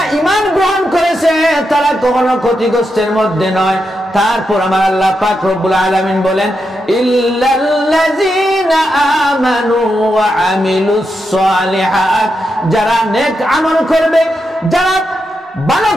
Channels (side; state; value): both; normal; correlation 0.85